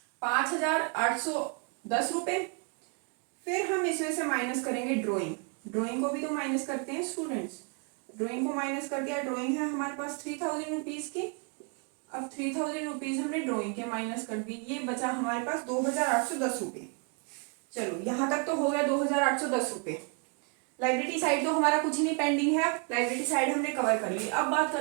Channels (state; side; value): quieter; left; 36.7 dB